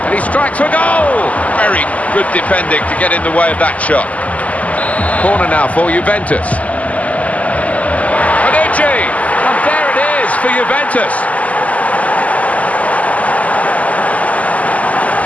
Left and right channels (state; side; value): late; right; 0.072 ms